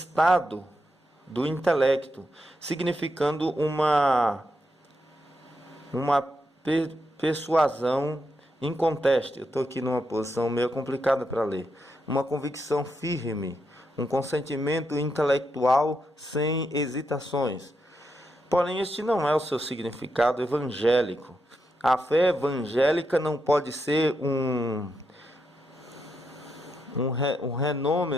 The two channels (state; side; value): normal; both; correlation 0.83